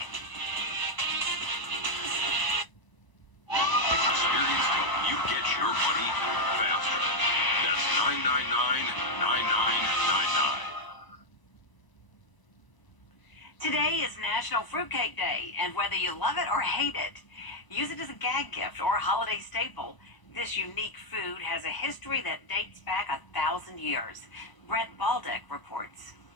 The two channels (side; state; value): right; late; 1.0 ms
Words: Experience help you get your money faster. That's 999-99 Today is National Fruitcake Day, and whether you love it or hate it, use it as a gag gift or a holiday staple. This unique food has a history that dates back 1,000 years. Brett Baldick reports.